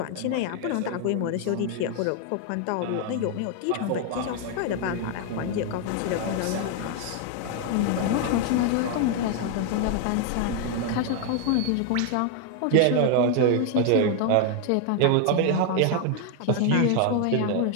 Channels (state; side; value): different; both; correlation 0.00